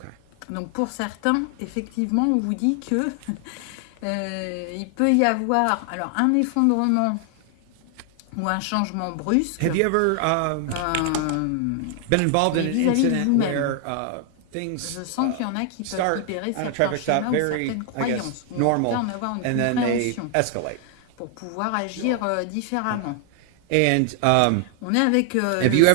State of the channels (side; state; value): both; different; correlation 0.00